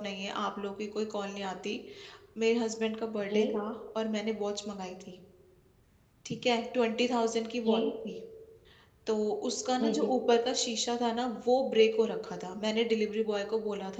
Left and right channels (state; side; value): identical; both; correlation 1.00